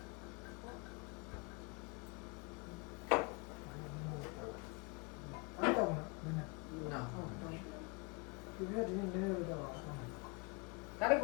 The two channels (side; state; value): right; quieter; 30.2 dB